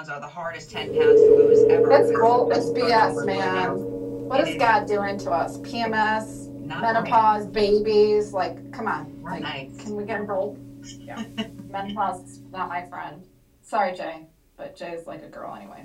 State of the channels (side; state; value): both; identical; correlation 1.00